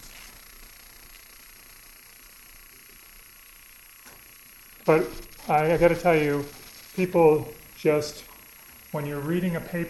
But I got to tell you, people just, when you're reading a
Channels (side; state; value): both; identical; correlation 1.00